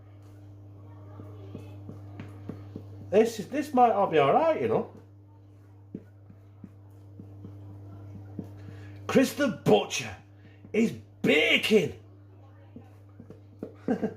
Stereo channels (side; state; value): both; identical; correlation 1.00